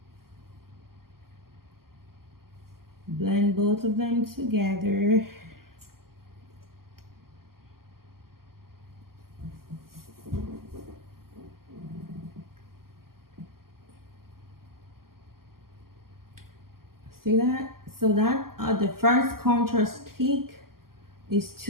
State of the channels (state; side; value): late; left; 0.92 ms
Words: blend both of them together. See that? So that the first contour stick is